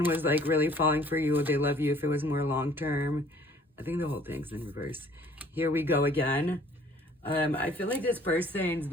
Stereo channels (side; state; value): both; normal; correlation 0.55